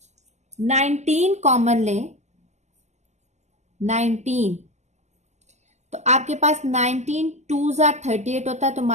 19 कॉमन लें, 19, तो आपके पास 19 2 जार 38 होता है तो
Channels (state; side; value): late; left; 0.33 ms